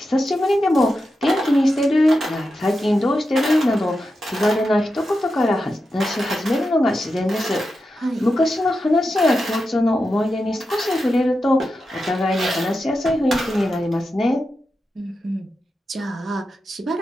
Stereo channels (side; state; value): both; normal; correlation 0.89